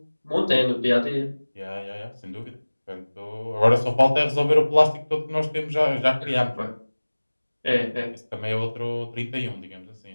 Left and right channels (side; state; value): both; inverted; correlation -1.00